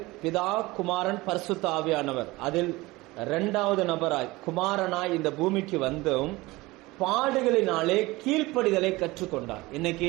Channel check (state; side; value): quieter; left; 20.9 dB